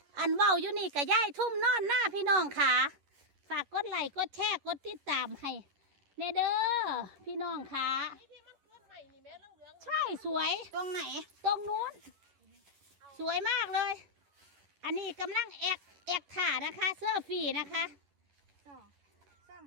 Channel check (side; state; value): left; late; 11 ms